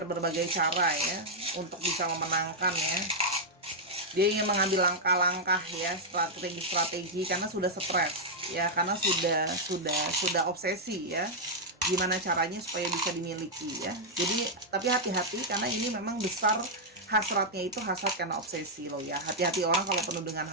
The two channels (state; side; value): normal; both; correlation -0.04